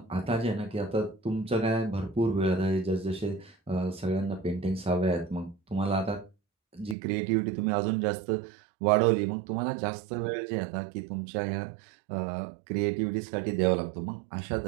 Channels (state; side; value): drops out; left; at 7.0 s